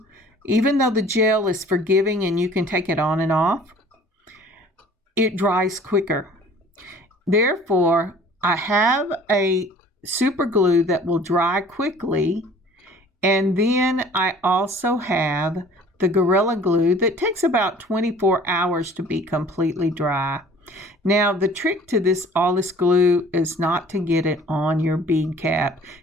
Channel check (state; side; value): normal; both; correlation 0.50